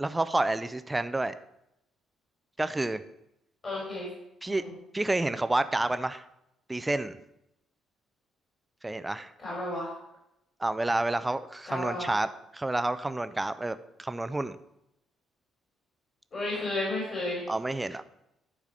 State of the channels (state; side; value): normal; both; correlation 0.93